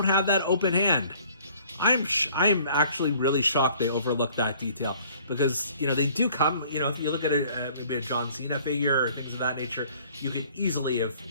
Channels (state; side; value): inverted; both; correlation -0.55